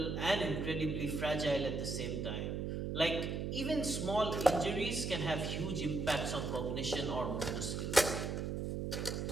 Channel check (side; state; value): right; noise; hum, 2 dB below the sound